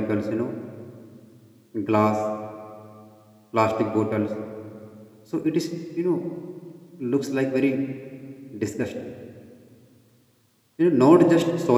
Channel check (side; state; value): both; identical; correlation 1.00